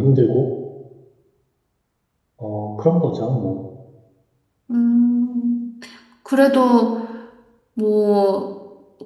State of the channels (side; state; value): both; identical; correlation 1.00